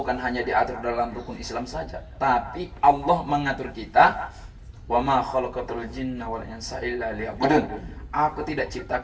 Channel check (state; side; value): identical; both; correlation 1.00